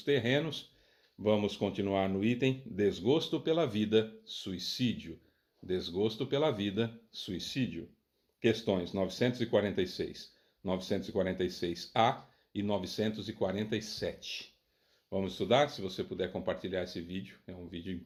Terrenos. Vamos continuar no item Desgosto pela Vida, Suicídio. Desgosto pela Vida, Suicídio. Questões 946, 946A e 947. Vamos estudar? Se você puder compartilhar esse vídeo, é um vídeo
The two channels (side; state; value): both; identical; correlation 1.00